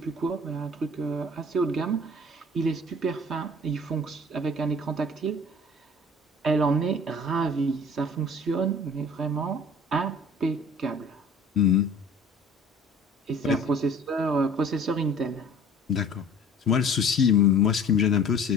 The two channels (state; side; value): normal; both; correlation 0.48